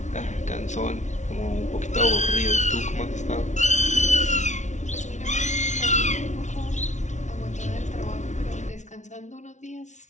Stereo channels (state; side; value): late; right; 0.35 ms